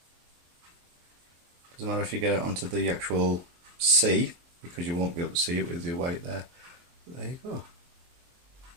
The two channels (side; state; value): left; late; 23 ms